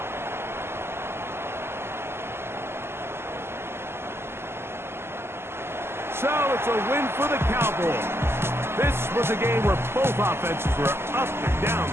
So it's a win for the Cowboys. This was a game where both offenses were up and down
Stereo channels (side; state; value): left; late; 0.12 ms